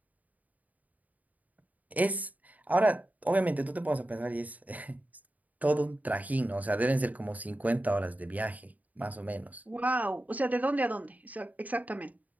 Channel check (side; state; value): left; late; 0.075 ms